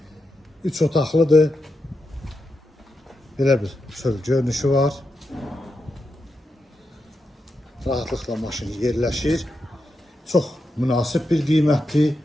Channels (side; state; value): both; normal; correlation 0.87